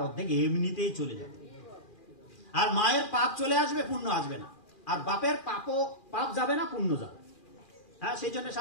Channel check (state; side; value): late; right; 2.4 ms